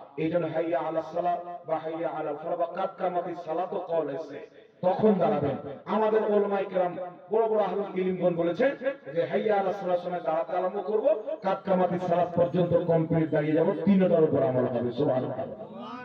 এইজন্য হাইয়া আলাস সালাহ বা হাইয়া আলাল ফালাহ বা কাদ কামাতিস সালাত কওল আছে, তখন দাঁড়াবেন। আমাদের উলামায়ে কেরাম বড় বড় আহলুল ইলমগণ বলেছেন যে হাইয়া আলাস সালাহ সময় দাঁড়াতে আরম্ভ করব, কাদ কামাতিস সালাত পর্যন্ত কমপ্লিট দাঁড়িয়ে যাব, তিনটার উপর আমল হবে। সুবহানাল্লাহ।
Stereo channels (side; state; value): both; identical; correlation 1.00